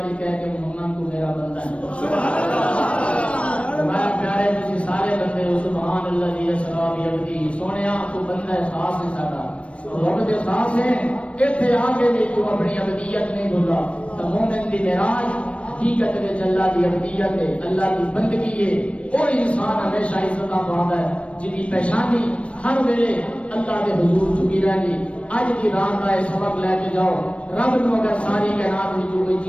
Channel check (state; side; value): late; right; 0.062 ms